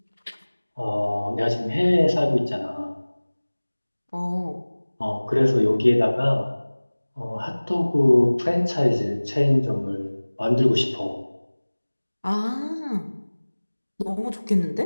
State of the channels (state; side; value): inverted; both; correlation -1.00